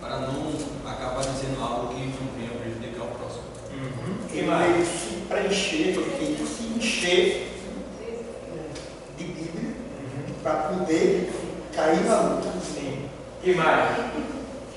para não acabar dizendo algo que não venha prejudicar o próximo. Ele se preencher, ele se encher de Bíblia para poder cair na luta. Sim. E mais?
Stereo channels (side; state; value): both; identical; correlation 1.00